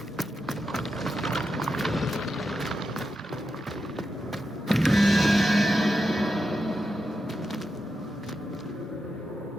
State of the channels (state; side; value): normal; both; correlation 0.87